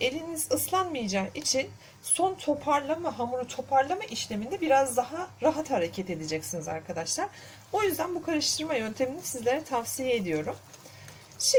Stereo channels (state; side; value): identical; both; correlation 1.00